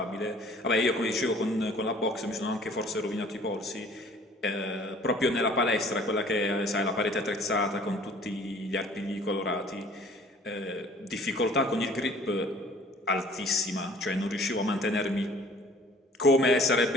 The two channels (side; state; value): both; normal; correlation 0.52